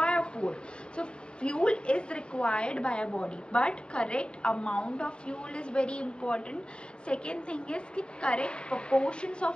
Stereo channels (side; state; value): right; late; 0.052 ms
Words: food. So fuel is required by our body, but correct amount of fuel is very important. Second thing is कि correct proportions